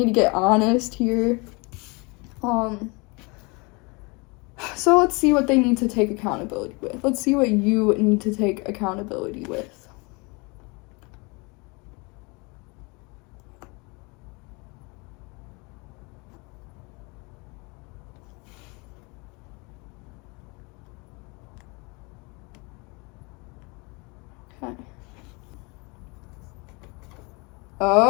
to get honest here. So let's see what they need to take accountability with. Let's see what you need to take accountability with. Okay.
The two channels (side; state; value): right; quieter; 28.8 dB